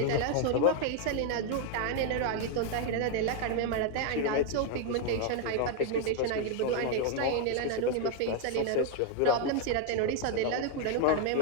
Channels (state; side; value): different; both; correlation 0.00